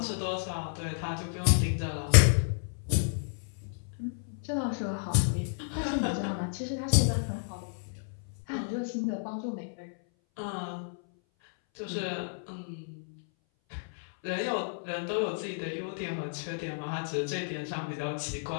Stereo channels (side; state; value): right; silent; 57 dB below the other